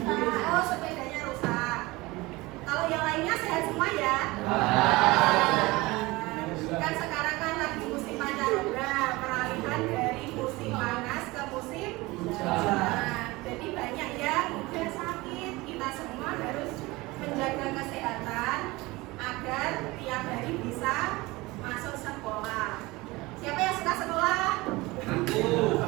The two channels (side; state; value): left; quieter; 21.6 dB